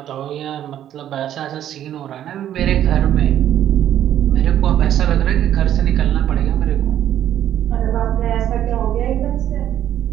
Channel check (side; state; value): left; quieter; 11.2 dB